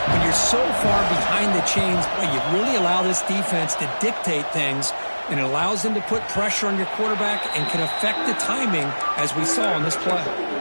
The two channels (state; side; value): inverted; both; correlation -1.00